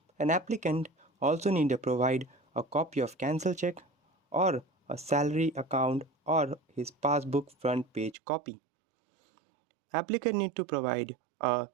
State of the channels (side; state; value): left; drops out; at 8.2 s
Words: An applicant also need to provide a copy of cancel check or a salary account or his passbook front page copy. Applicant need to provide a